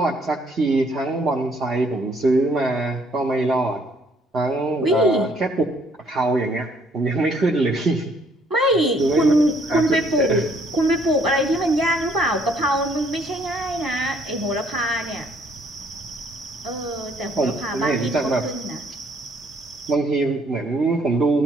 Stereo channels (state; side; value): normal; both; correlation 0.64